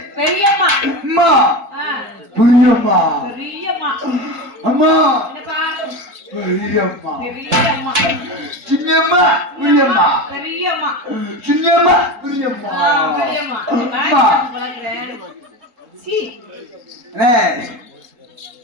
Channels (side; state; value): left; late; 3.8 ms